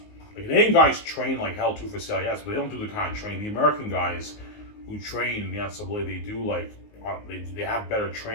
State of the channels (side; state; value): right; late; 19 ms